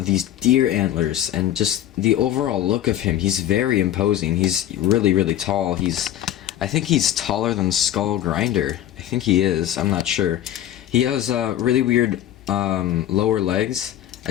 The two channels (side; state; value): right; quieter; 12.1 dB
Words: deer antlers, and just the overall look of him. He's very imposing. He's really tall. I think he's taller than Skullgrinder. I think he is. I'm not sure. He has really weird lower legs.